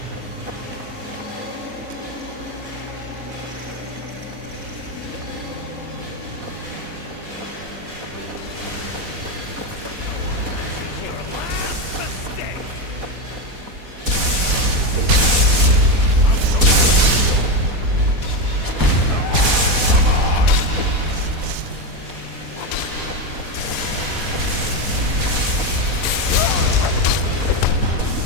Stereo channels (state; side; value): late; left; 4.1 ms